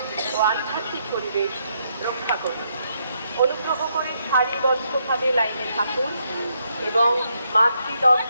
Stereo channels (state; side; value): inverted; both; correlation -0.76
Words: ও আধ্যাত্মিক পরিবেশ রক্ষা করুন। অনুগ্রহ করে সারিবদ্ধভাবে লাইনে থাকুন এবং